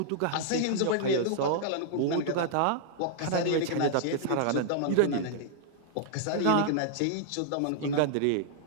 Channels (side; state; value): both; different; correlation -0.01